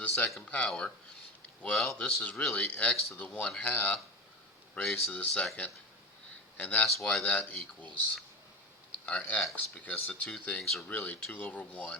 second power, well, this is really x to the 1/2 raised to the second, and that's why that equals our x, because the two things are really 2 over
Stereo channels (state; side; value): normal; both; correlation 0.23